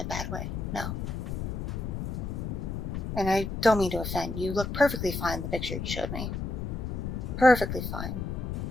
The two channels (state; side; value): noise; left; rumble, 4 dB below the sound